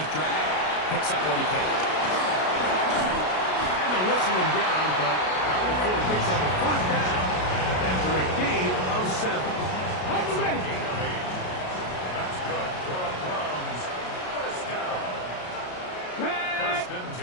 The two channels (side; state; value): right; late; 33 ms